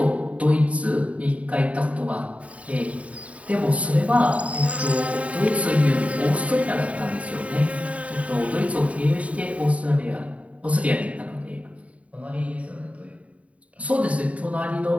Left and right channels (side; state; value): left; late; 0.067 ms